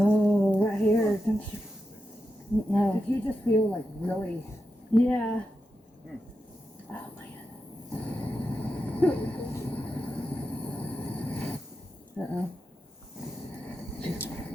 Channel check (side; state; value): both; normal; correlation 0.88